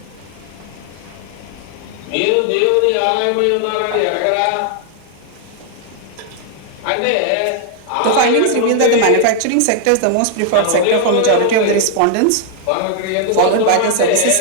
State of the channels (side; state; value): both; different; correlation 0.00